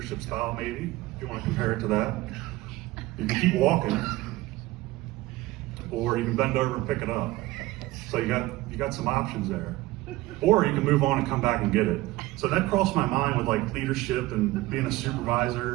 style maybe, if you want to compare it to that. You can keep walking, or you can bend over and pick it up. So you got some options there. Or you can move on and come back and get it. So that crossed my mind with like leadership and being a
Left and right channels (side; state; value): left; quieter; 18.6 dB